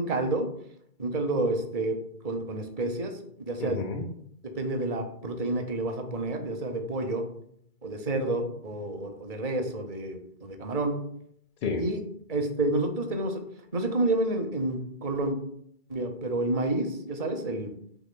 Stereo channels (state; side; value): late; right; 2.3 ms